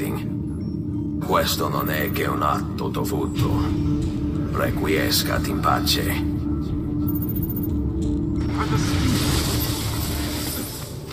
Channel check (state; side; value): identical; both; correlation 1.00